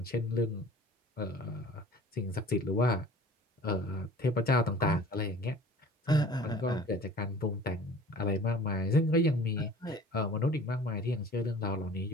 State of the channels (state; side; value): normal; both; correlation 0.45